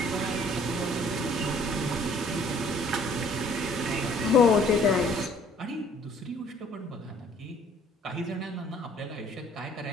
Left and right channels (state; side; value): normal; both; correlation 0.57